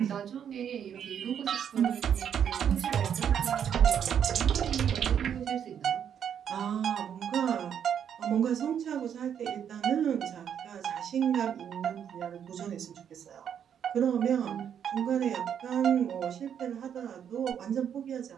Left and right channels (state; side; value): quieter; left; 8.6 dB